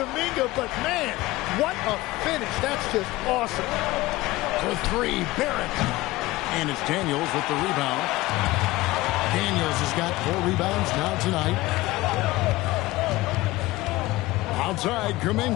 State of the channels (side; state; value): right; quieter; 19.0 dB